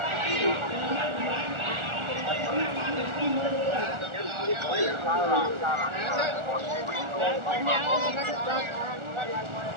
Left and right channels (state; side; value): late; left; 1.4 ms